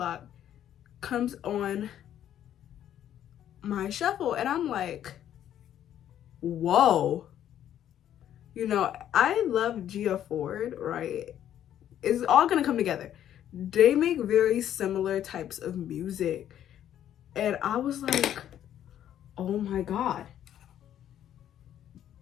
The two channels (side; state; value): right; quieter; 10.8 dB